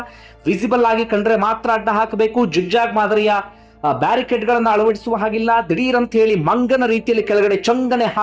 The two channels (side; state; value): both; identical; correlation 1.00